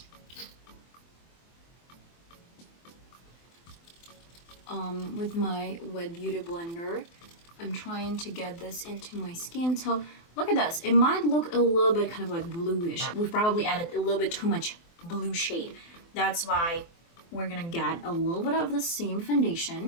With my Wet Beauty blender, I'm trying to get this into my skin. So look at this. It might look a little bit kind of like bluish. We've probably added a little bit too much blue shade. That's why we're gonna get a little bit of the same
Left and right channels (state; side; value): late; right; 24 ms